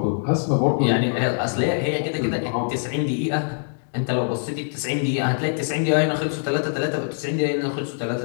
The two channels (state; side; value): silent; right; digital silence